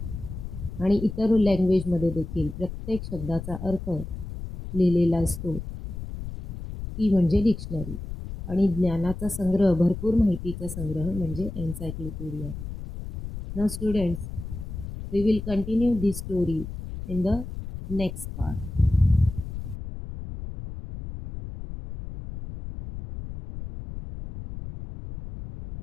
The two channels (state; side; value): noise; left; rumble, 9 dB below the sound